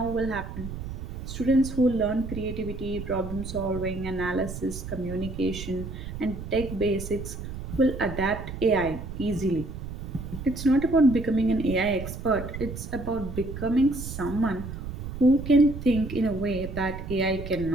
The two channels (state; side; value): noise; right; rumble, 8 dB below the sound